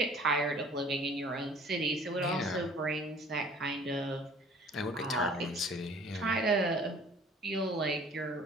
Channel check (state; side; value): normal; both; correlation 0.51